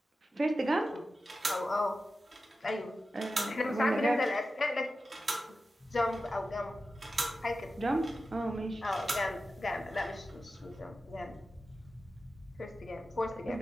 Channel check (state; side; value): normal; both; correlation 0.93